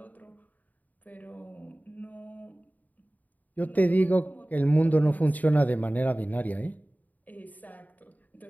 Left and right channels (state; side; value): late; right; 0.078 ms